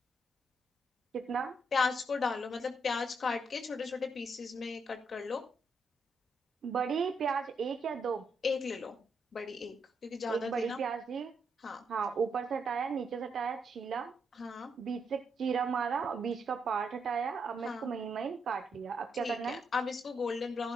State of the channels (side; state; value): both; normal; correlation 0.78